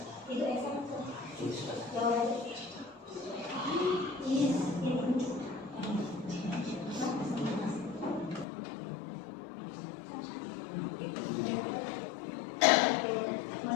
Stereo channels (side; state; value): right; drops out; at 8.5 s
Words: Itu Esa. Jawabannya. Is in.